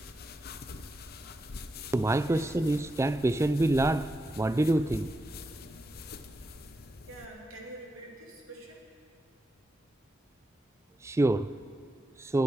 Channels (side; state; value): both; normal; correlation 0.87